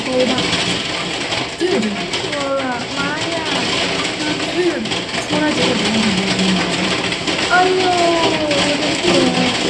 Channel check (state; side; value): identical; both; correlation 1.00